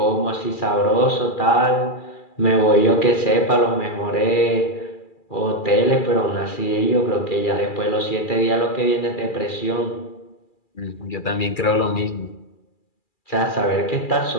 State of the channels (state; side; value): late; right; 2.4 ms